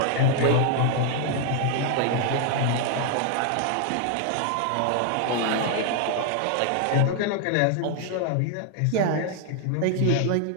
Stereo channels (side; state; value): both; different; correlation 0.00